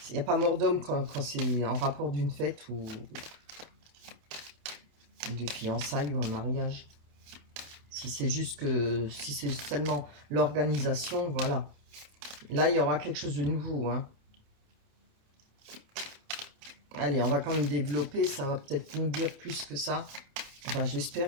Il n'y a pas mort d'homme quand c'est en rapport d'une fête ou des fiançailles ou un mariage. Si c'est juste que, si c'est seulement l'organisation, voilà. Là, il y aura quelque chose de nouveau, hein. Allez, on va quand même développer, ça va peut-être nous dire plus que ça. Enfin,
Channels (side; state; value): left; late; 28 ms